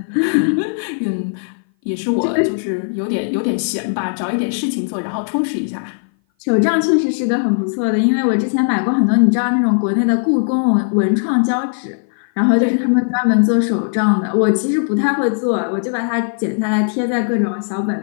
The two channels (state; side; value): silent; right; 58 dB below the other